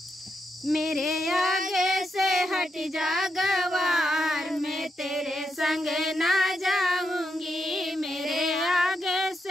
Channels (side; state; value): both; normal; correlation 0.83